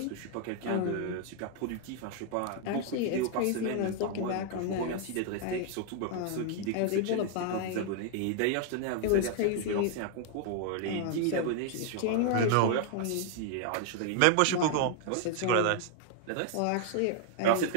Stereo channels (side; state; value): both; different; correlation 0.00